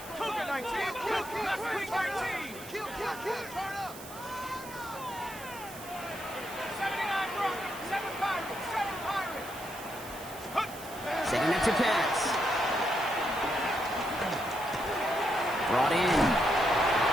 Cougar 19. Cougar 19. Kill, turn up. 79 Broncos, 7 Pirates, 7 Pirates. Setting up to pass. Brought in.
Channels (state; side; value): noise; right; hiss, 15 dB below the sound